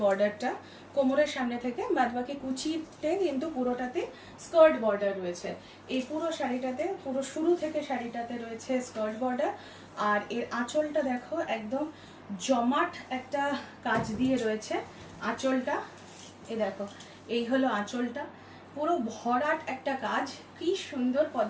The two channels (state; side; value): identical; both; correlation 1.00